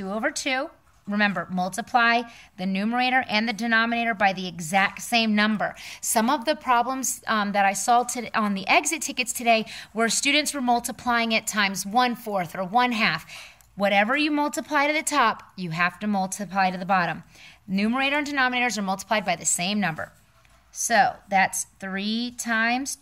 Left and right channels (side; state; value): both; identical; correlation 1.00